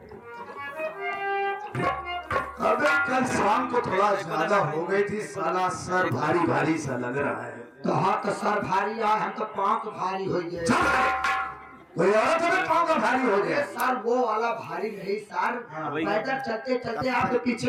अबे कल शाम को थोड़ा ज्यादा हो गई थी, साला सर भारी भारी सा लग रहा है। तो हाँ तो सर भारी आ, हम तो पाँव तो भारी हो गए। कोई औरत तो पाँव का भारी हो गया। सर वो वाला भारी नहीं सर, पैदल चलते चलते आपके पीछे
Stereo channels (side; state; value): both; identical; correlation 1.00